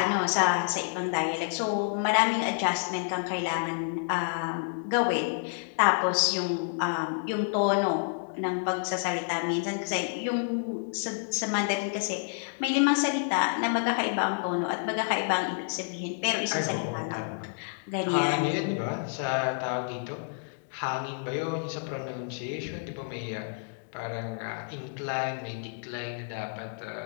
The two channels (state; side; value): silent; right; digital silence